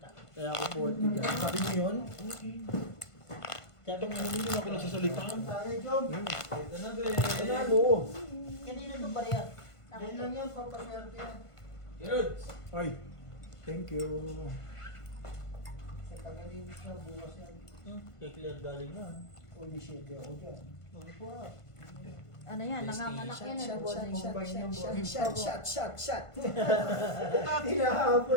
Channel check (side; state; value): right; late; 1.5 ms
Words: Kaya ako 40 dyan. Sabi niyo yun? Sabi niya, Hindi ako nagsasalita. Tayo, Jom. Panalo. kanina ito bariya. Yan lang yan, papaswerte yan. Ay, thank you. Sa tagalinis na bukas yan. Kay Claire galing na. Holy shit, ako dyan. Ano yan, nanganganak yan. Shot.